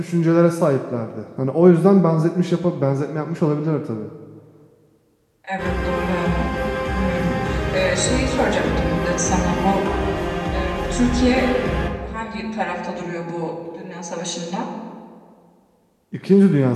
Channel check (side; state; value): both; identical; correlation 1.00